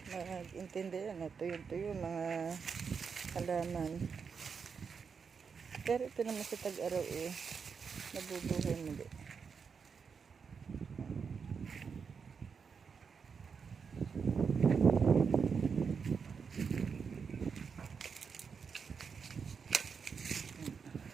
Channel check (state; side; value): quieter; left; 5.9 dB